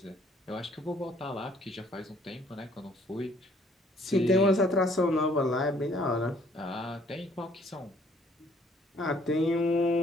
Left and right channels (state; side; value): normal; both; correlation 0.62